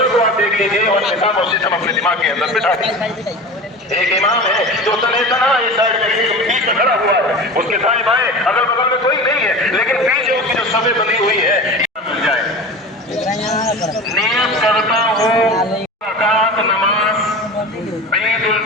को आप देख लीजिए और निकाम और सिस्टम अपने दिमाग के अंदर बिठा दीजिए। एक इमाम है जो तना इस साइड में बीच में खड़ा हुआ है, उसके दाएं बाएं अगल बगल में कोई नहीं है, लेकिन पीछे उसकी जो सभे बनी हुई है मिल जाए। नियत करता हूँ रकात नमाज ईद उल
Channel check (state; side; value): normal; both; correlation 0.32